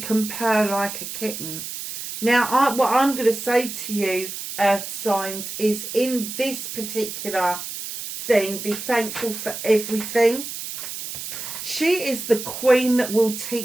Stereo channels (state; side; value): noise; right; hiss, 8 dB below the sound